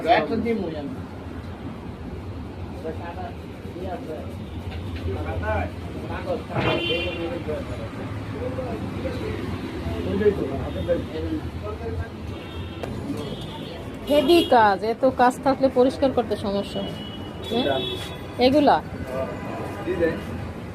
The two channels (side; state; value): both; identical; correlation 1.00